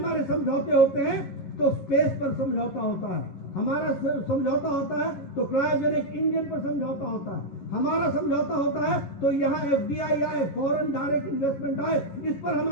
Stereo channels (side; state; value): right; late; 10 ms